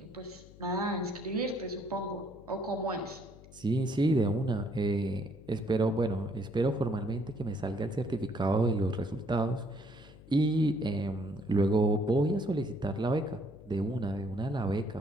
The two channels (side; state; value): left; noise; hum, 20 dB below the sound